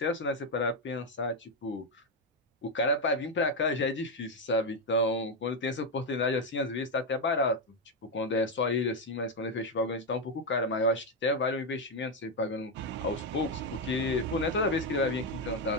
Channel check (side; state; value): both; normal; correlation 0.06